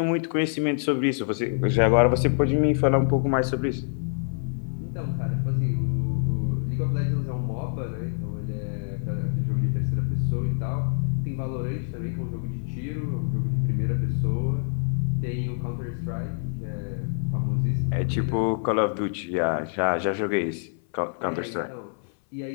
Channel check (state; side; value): silent; right; 59 dB below the other